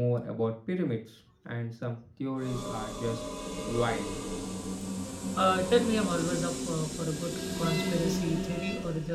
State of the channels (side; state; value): both; identical; correlation 1.00